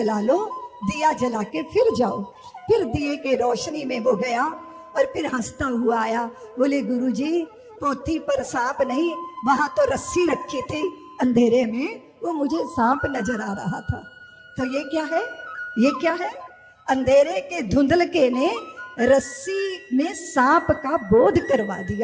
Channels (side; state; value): both; identical; correlation 1.00